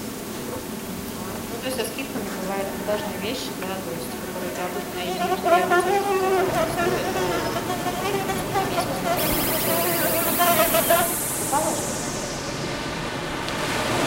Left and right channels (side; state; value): both; identical; correlation 1.00